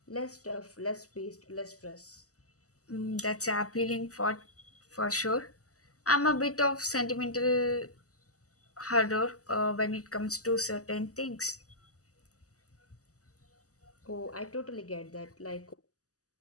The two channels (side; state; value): right; late; 0.66 ms